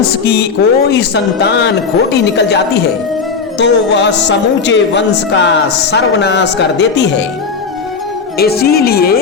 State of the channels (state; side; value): quieter; right; 5.2 dB